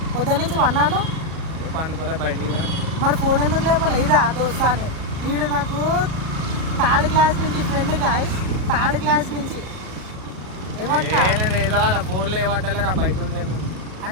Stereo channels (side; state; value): left; late; 37 ms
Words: పొద్దున్న నుంచి వన్నాను. పండుకోలే బయటికి. మరి ఫోన్ ఎందుకు లేపాలి? ఇదా దోస్తా అని. వీడు నాకు 3rd క్లాస్ నుంచి ఫ్రెండ్, గాయస్ 3rd క్లాస్ నుంచి. ఏమంటా నేను ఏదో ఫోన్లో ఏమంటలేరా బయట ఉండేది